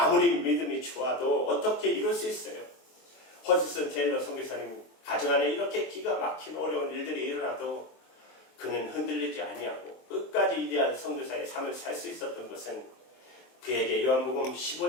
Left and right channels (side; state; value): right; late; 23 ms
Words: 믿음이 좋아도 어떻게 이룰 수 있어요? 허드슨 테일러 선교사님 가정 안에 이렇게 기가 막힌 어려운 일들이 일어나도 그는 흔들리지 아니하고 끝까지 위대한 선교사의 삶을 살 수 있었던 것은 그에게 요한복음